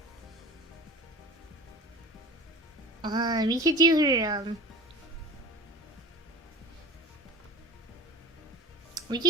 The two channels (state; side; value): normal; both; correlation 0.36